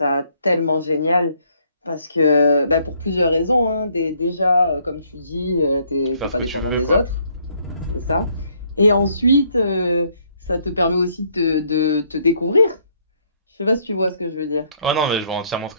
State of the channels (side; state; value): both; inverted; correlation -0.68